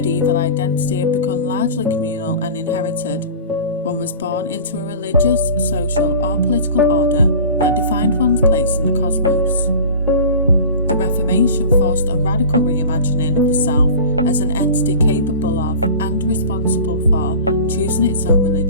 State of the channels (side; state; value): both; inverted; correlation -0.38